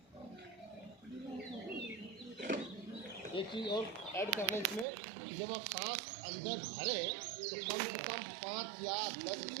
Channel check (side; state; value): left; drops out; at 4.9 s